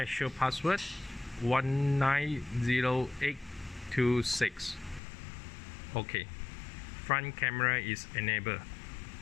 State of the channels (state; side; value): drops out; right; at 5.0 s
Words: password 190826. Okay, front camera is enabled.